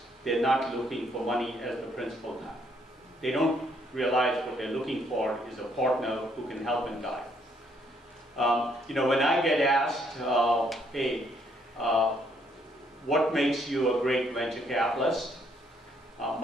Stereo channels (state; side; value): normal; both; correlation 0.69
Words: they're not looking for money as the principal now. They don't realize what they're looking for is a partner who can help and guide. When I get asked, hey, what makes you a great venture capitalist?